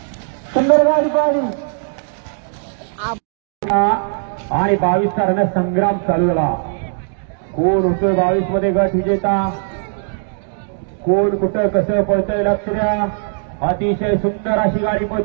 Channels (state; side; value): silent; left; digital silence